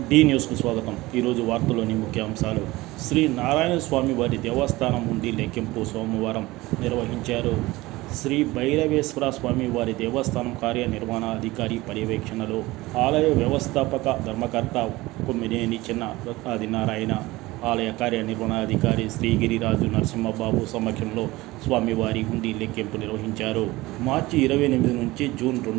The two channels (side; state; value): left; quieter; 19.7 dB